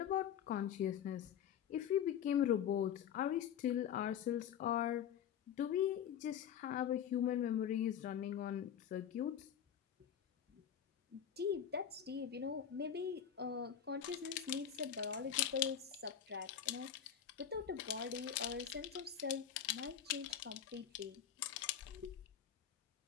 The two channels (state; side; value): quieter; right; 9.0 dB